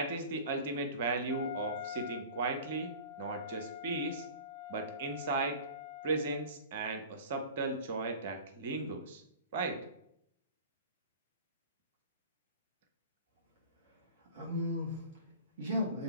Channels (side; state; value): both; inverted; correlation -0.39